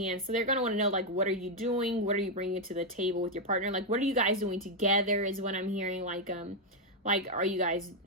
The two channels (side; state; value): both; normal; correlation 0.01